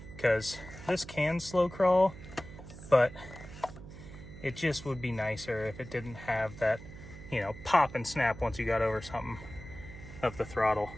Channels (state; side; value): noise; right; hum, 15 dB below the sound